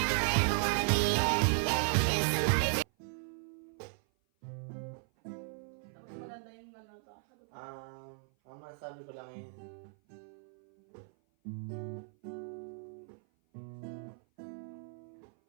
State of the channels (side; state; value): left; silent; 54 dB below the other